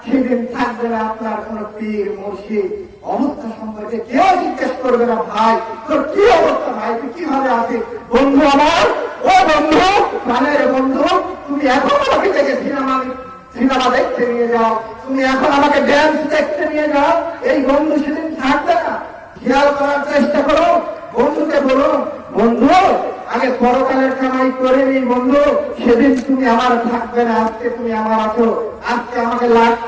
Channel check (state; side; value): identical; both; correlation 1.00